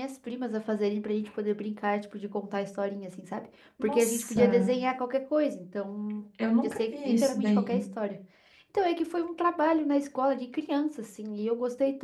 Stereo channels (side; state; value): both; identical; correlation 1.00